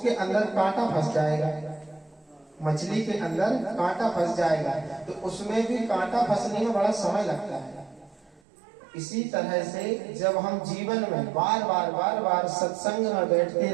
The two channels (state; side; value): drops out; left; at 8.4 s